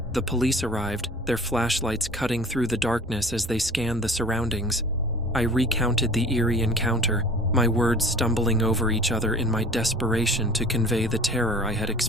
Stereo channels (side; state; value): both; normal; correlation 0.44